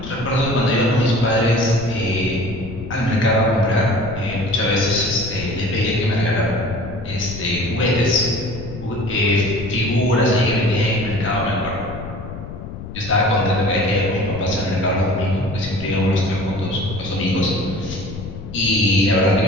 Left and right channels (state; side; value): noise; left; rumble, 10 dB below the sound